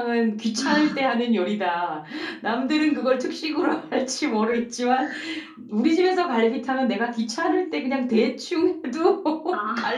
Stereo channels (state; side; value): identical; both; correlation 1.00